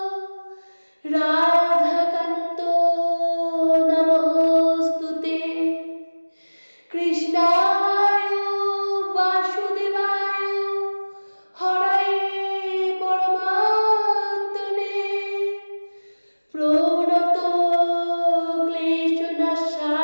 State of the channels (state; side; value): inverted; both; correlation -1.00